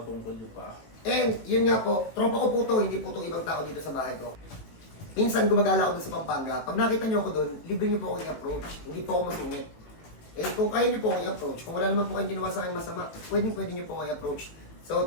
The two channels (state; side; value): late; right; 18 ms